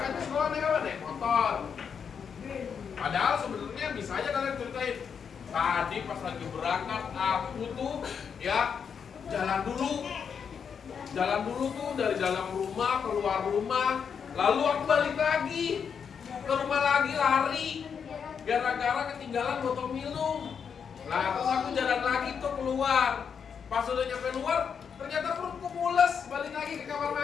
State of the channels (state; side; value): quieter; right; 6.8 dB